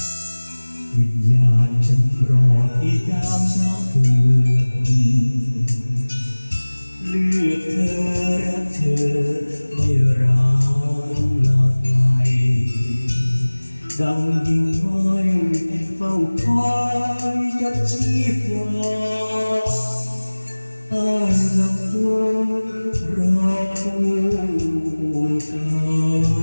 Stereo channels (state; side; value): inverted; both; correlation -1.00